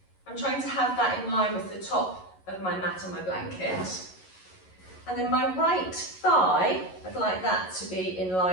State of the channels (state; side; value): late; right; 11 ms